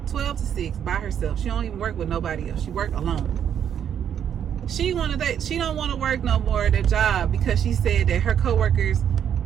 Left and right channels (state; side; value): quieter; left; 8.9 dB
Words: 12 to 6 by herself. She don't even work with nobody else. She work alone. She don't want to work no more at that job because she said that her coworkers,